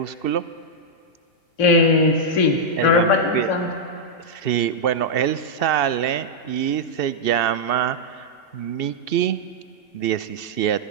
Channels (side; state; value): right; late; 2.7 ms